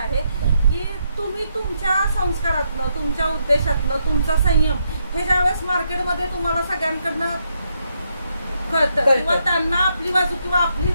की तुम्ही तुमच्या संस्कारातनं, तुमच्या उद्देशातनं, तुमचा संयम हे ज्यावेळेस मार्केटमध्ये तुम्हाला सगळ्यांकडनं कळतं किंवा त्यांना आपली बाजू किंवा आपली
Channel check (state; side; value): inverted; both; correlation -0.78